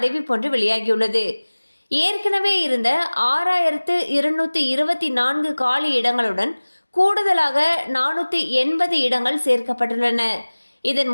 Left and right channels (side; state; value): both; inverted; correlation -1.00